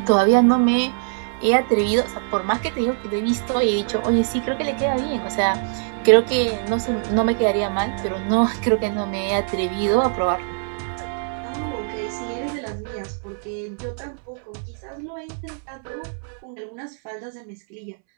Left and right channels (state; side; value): silent; left; 64 dB below the other